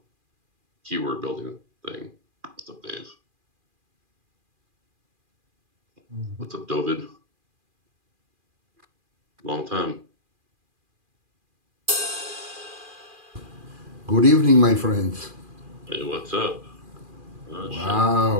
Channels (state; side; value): late; left; 2.4 ms